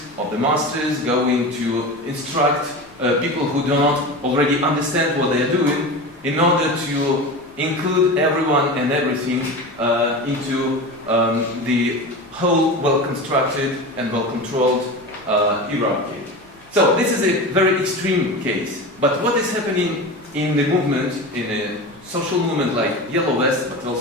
going to instruct people who do not already understand what they are doing in order to include everyone and everything into the whole well-constructed and well-controlled hierarchy. So this is a very extreme case. But what is happening in the movement, in a social movement like Yellow Vest, but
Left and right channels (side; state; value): both; normal; correlation 0.28